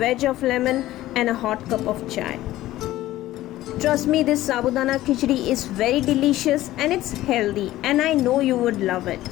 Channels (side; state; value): right; quieter; 15.4 dB